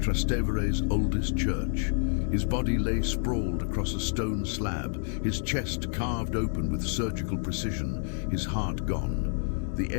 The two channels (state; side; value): silent; right; 59 dB below the other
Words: oldest church. His body lay sprawled across a stone slab, his chest carved open with surgical precision, his heart gone. The